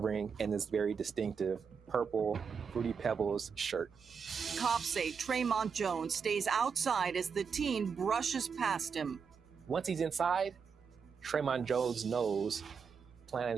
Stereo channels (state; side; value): quieter; left; 6.1 dB